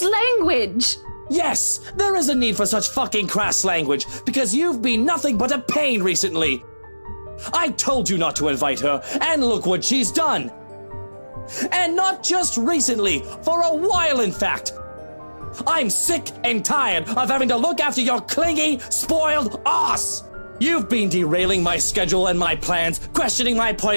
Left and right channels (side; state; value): both; inverted; correlation -1.00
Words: language. Yes, there is a need for such fucking crass language, because you've been nothing but a pain recently. I told you not to invite her, and look what she's done. And not just recently, for a while in fact. I'm sick and tired of having to look after your clingy, spoiled ass. You've been derailing my schedule and my plans, questioning my